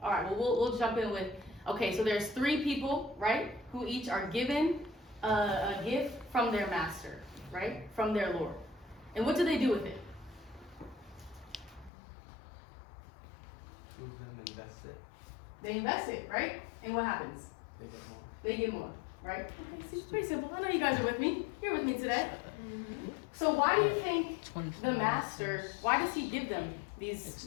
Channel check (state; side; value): drops out; right; at 11.9 s